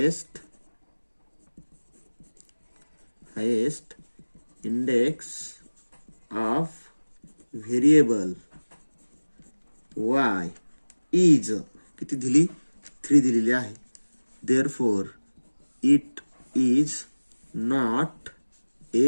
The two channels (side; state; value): both; inverted; correlation -1.00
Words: index of variable y is किती दिली, 3 दिलेली आहे. Therefore it is not